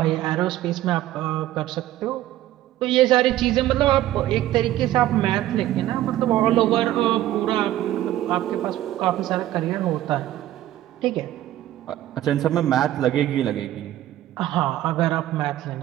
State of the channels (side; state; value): left; quieter; 14.0 dB